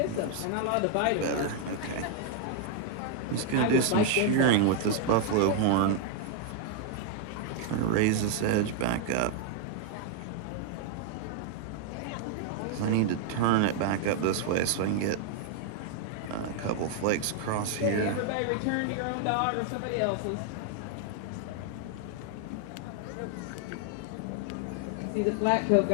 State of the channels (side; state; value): both; different; correlation 0.00